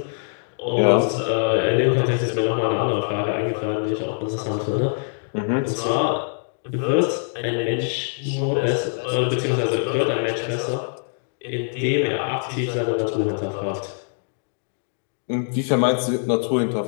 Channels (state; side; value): silent; right; digital silence